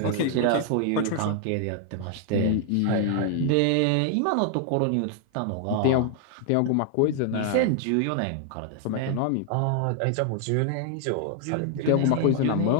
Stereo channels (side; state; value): both; different; correlation 0.00